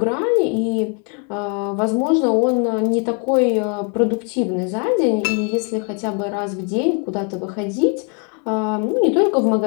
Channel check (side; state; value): right; quieter; 38.4 dB